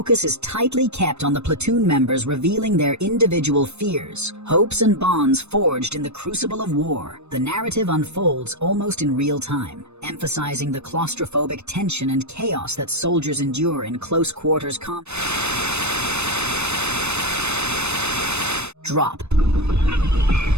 is tightly kept on the platoon members revealing their individual fears, hopes, and bonds forged in the crucible of war. The narrative unfolds almost in real time, emphasizing the claustrophobic tension and chaos that soldiers endure in close quarters combat. Drop.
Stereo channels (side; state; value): left; late; 0.81 ms